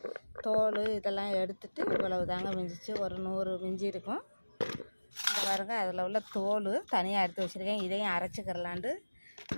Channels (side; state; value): both; inverted; correlation -1.00